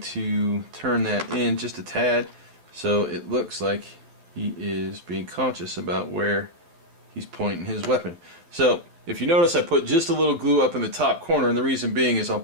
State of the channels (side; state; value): left; late; 12 ms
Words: to turn that in just a tad so it looks like he is being conscious about where he's pointing his weapon. So if you notice, I put just a little glue up in the top corner, and the reason being is I'll